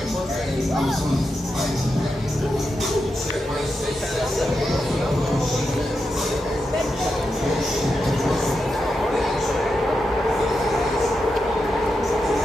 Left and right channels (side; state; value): both; normal; correlation 0.87